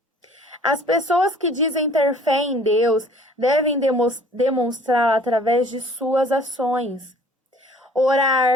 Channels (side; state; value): both; normal; correlation 0.53